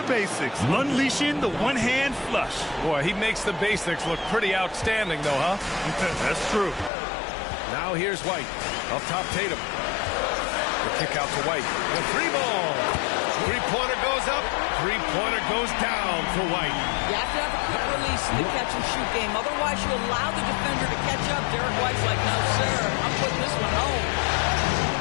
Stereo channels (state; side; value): drops out; right; at 6.9 s